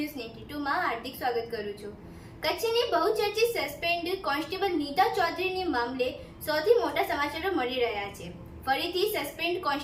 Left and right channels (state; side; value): identical; both; correlation 1.00